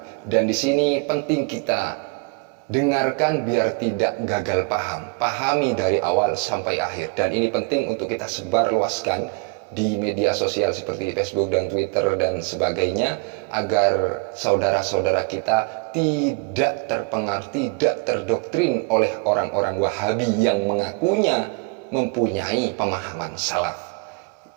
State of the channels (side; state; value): left; quieter; 34.1 dB